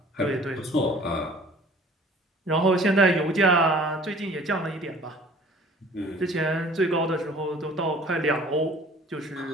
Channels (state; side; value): normal; both; correlation 0.50